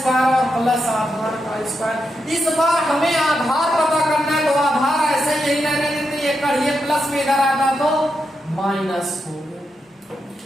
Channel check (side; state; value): both; normal; correlation 0.85